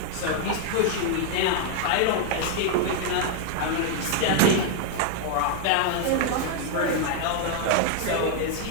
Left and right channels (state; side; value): different; both; correlation 0.00